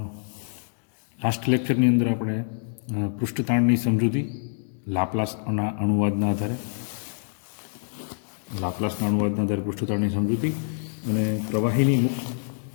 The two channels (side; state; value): right; silent; 61 dB below the other